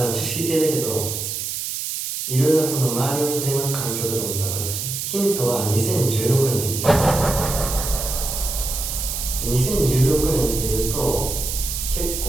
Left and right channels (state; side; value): noise; right; hiss, 4 dB below the sound